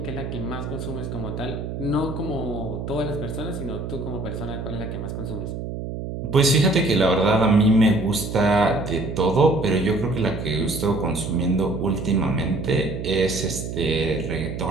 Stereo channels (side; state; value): right; noise; hum, 6 dB below the sound